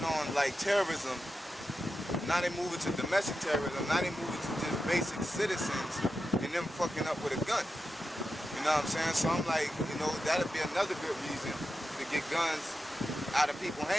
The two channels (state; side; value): normal; both; correlation 0.90